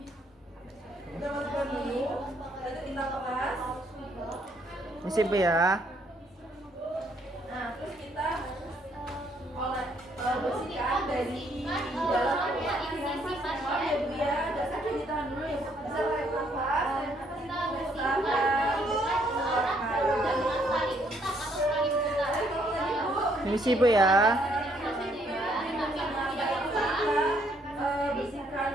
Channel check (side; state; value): both; normal; correlation 0.69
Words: Permisi Bu ya. Permisi Bu ya. Bersihkan